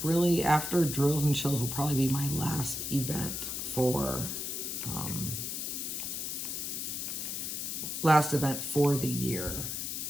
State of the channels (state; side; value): noise; left; hiss, 3 dB below the sound